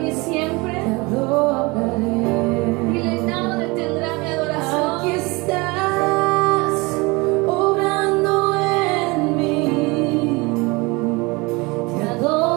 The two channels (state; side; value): quieter; left; 25.2 dB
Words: y siempre. Te adoraré. Dile, nada detendrá mi adoración. Aquí estás obrando en mí. Te